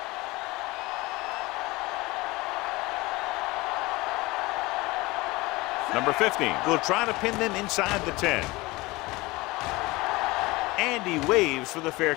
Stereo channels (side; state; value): right; quieter; 21.9 dB